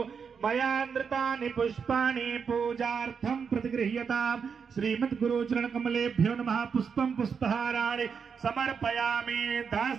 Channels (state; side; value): quieter; left; 6.2 dB